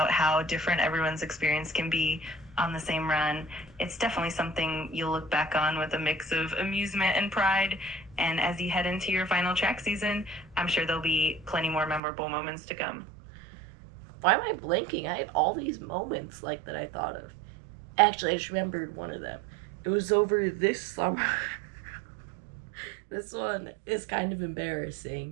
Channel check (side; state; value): left; drops out; at 12.0 s